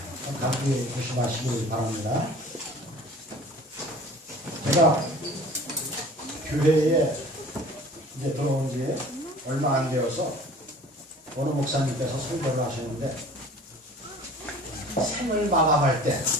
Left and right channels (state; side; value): normal; both; correlation 0.46